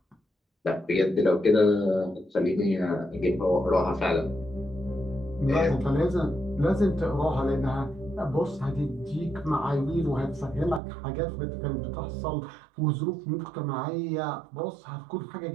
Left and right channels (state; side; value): drops out; left; at 10.8 s